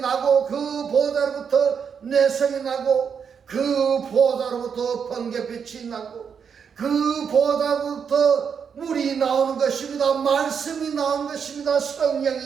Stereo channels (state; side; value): quieter; left; 6.8 dB